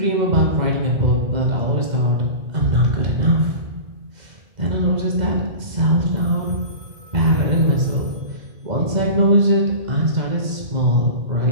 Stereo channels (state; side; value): late; left; 2.1 ms